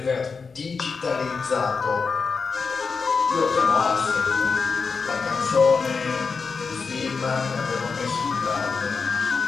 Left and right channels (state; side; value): quieter; right; 5.0 dB